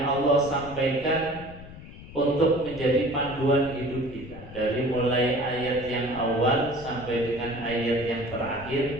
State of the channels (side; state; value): left; noise; rumble, 15 dB below the sound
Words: Allah sampaikan untuk menjadi panduan hidup kita. Dari mulai ayat yang awal sampai dengan ayat yang terakhir,